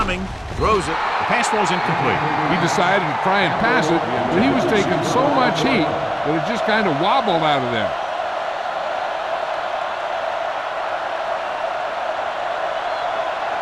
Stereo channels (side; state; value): both; identical; correlation 1.00